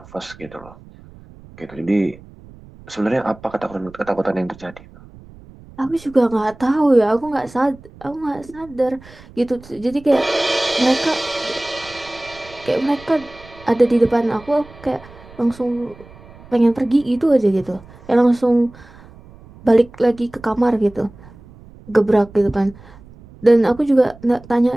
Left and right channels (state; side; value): noise; right; rumble, 22 dB below the sound